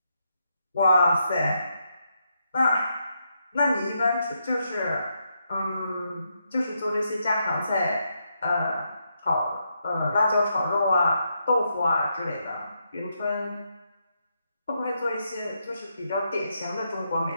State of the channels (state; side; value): inverted; both; correlation -0.80